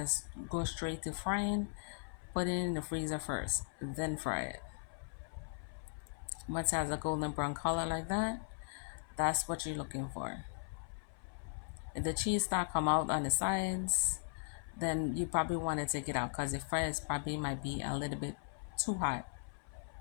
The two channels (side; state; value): right; silent; 52 dB below the other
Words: go straight to frying. Put it in the freezer first, then fry it. Once it has a golden brown color like that, that's what you're looking for. If the cheese start come out on the sides, then you probably want to take it out because the fries probably might be a little bit too hot.